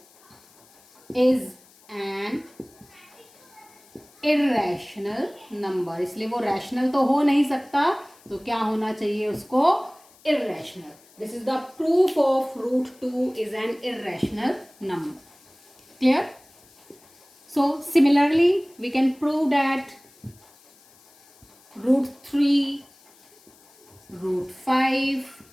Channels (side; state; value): left; noise; hiss, 28 dB below the sound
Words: is an irrational number, इसलिए वो रैशनल तो हो नहीं सकता, तो क्या होना चाहिए उसको, irrational. This is the proof of root 2 is an irrational number, clear. So similarly we can prove that root 3, root 5